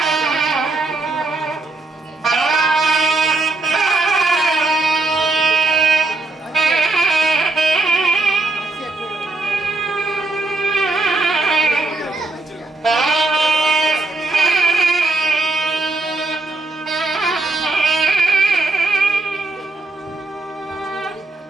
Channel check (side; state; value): left; quieter; 3.2 dB